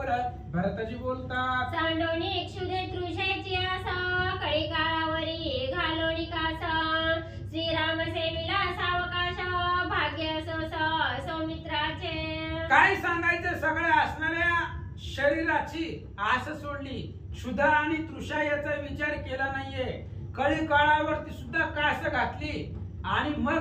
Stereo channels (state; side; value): identical; both; correlation 1.00